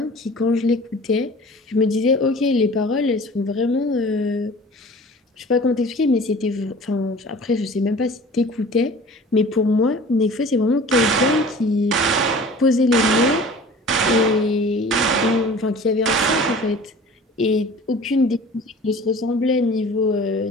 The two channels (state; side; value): normal; both; correlation 0.44